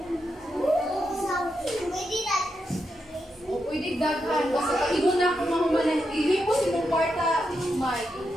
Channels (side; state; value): both; normal; correlation 0.85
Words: O pwede daghan. Basta pag-inon na ako mahuman. Ihipos imong kwarta, Mike.